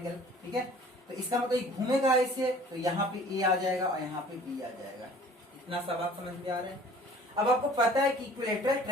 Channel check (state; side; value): normal; both; correlation 0.50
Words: ठीक है, तो इसका मतलब ये घूमेगा ऐसे, तो यहाँ पे ए आ जाएगा और यहाँ पे बी आ जाएगा। इतना सा बात समझ में आ रहा है। अब आपको पता है कि इक्विलेटरल